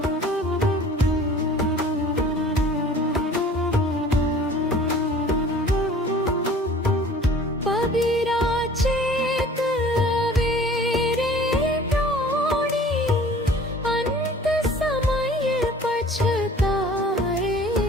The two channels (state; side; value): normal; both; correlation 0.48